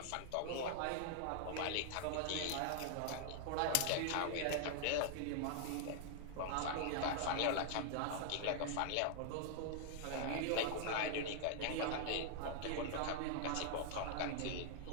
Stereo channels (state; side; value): different; both; correlation -0.01